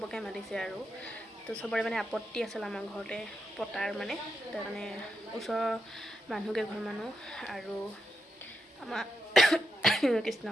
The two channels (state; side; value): normal; both; correlation 0.83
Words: মাতিছে আৰু তো চবৰে মানে আপত্তি আছিল আমাৰ ঘৰতে পতাৰ মানে, তাৰ কাৰণে ওচৰৰ মানুহকেইঘৰ মানুহ আৰু আমাৰ কৃষ্ণ